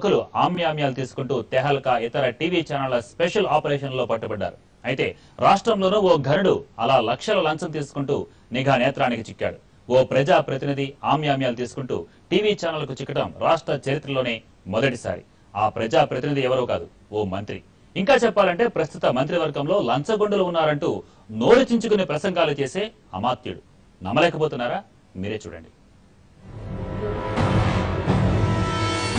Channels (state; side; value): identical; both; correlation 1.00